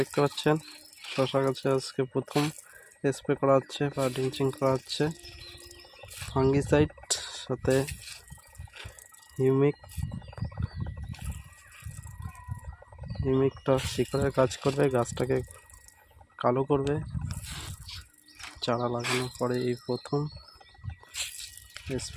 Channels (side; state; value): both; identical; correlation 1.00